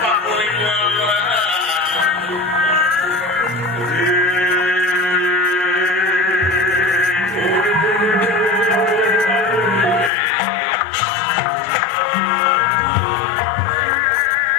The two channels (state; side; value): drops out; right; at 10.1 s